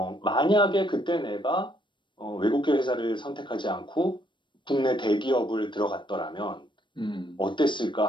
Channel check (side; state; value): right; late; 0.23 ms